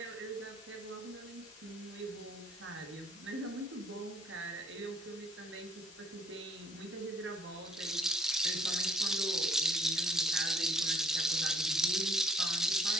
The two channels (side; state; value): both; normal; correlation 0.62